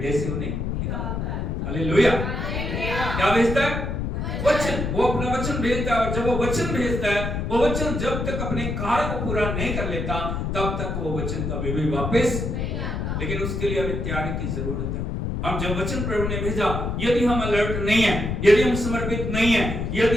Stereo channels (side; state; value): left; noise; rumble, 2 dB below the sound